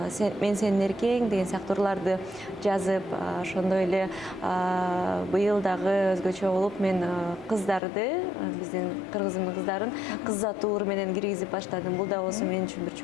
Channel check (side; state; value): right; drops out; at 7.8 s